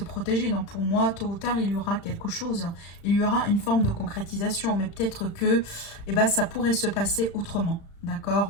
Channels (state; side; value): late; right; 35 ms